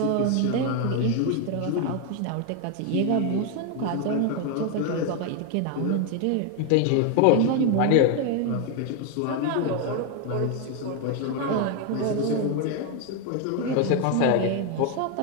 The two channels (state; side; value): different; both; correlation 0.01